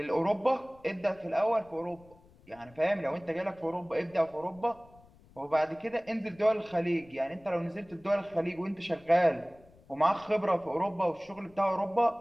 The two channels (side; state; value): left; noise; rumble, 26 dB below the sound